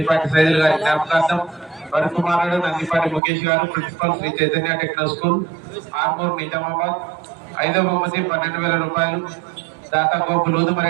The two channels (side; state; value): left; drops out; at 3.2 s